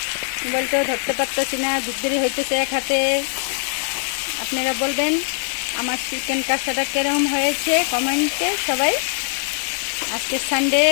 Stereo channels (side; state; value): right; silent; digital silence